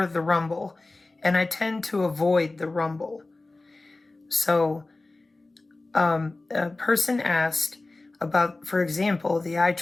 the Rumble, and I tend to avoid the Rumble. So a person asked about, for example, the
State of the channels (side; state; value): right; quieter; 3.1 dB